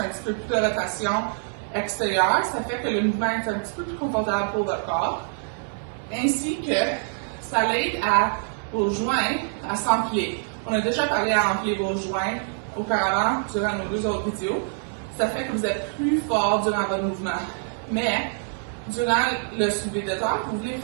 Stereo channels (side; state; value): left; silent; 60 dB below the other